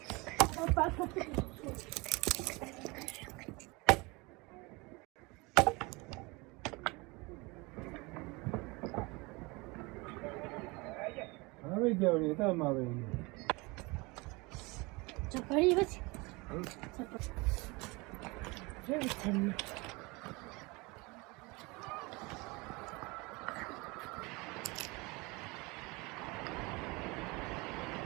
ပဲကြောက်နေတာမှပဲ 这可以不行，这不，这不成。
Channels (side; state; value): left; quieter; 25.5 dB